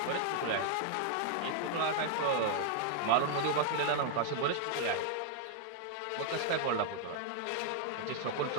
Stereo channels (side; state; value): both; different; correlation -0.01